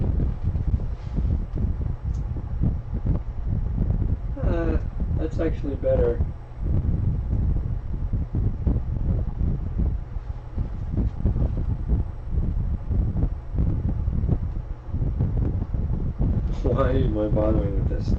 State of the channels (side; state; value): both; identical; correlation 1.00